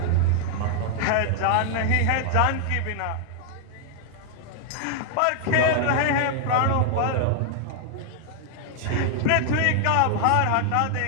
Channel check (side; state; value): both; different; correlation -0.01